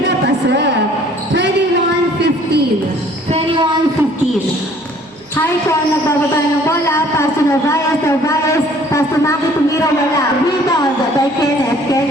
pasok. 21-15. 21-15. Haikon, nagbababa ng bola. Pass to Narvaez, Narvaez. Pass to Maki, tumira, wala. Rebound by Kenneth,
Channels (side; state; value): right; noise; hum, 30 dB below the sound